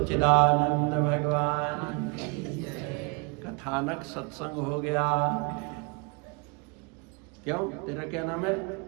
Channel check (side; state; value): left; quieter; 32.1 dB